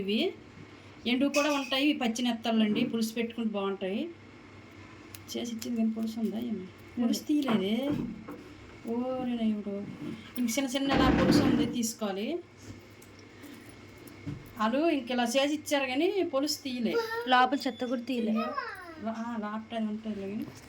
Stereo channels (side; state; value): both; identical; correlation 1.00